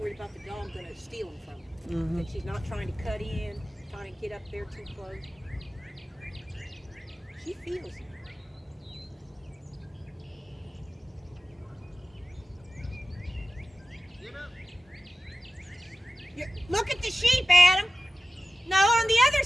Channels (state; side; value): normal; both; correlation 0.95